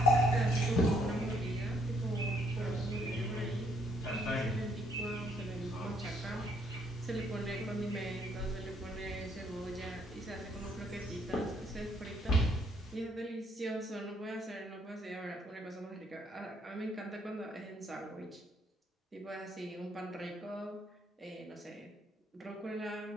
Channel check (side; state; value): both; normal; correlation 0.69